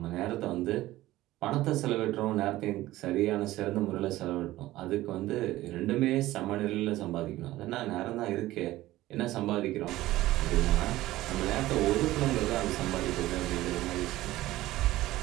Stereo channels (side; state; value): left; quieter; 16.4 dB